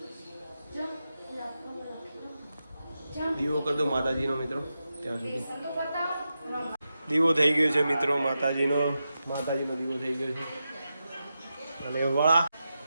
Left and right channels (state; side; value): inverted; both; correlation -0.89